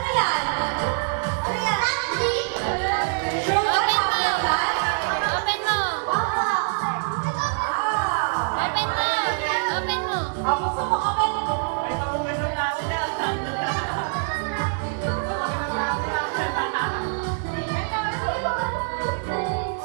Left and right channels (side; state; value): left; silent; digital silence